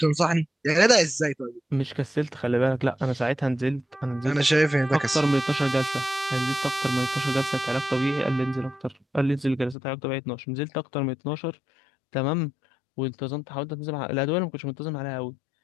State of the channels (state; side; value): drops out; right; at 9.8 s